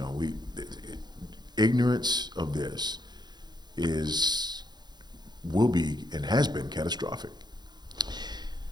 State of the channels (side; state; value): left; late; 0.21 ms